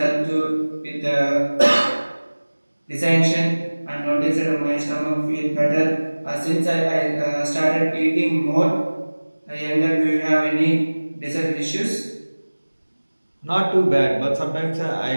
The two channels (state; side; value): inverted; both; correlation -1.00